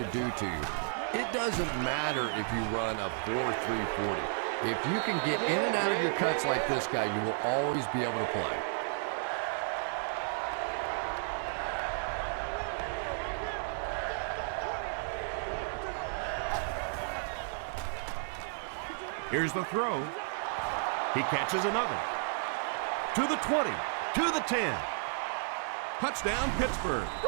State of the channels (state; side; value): silent; left; digital silence